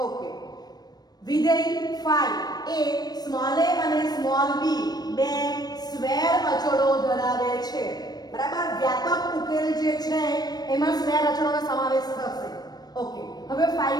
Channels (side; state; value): right; late; 0.19 ms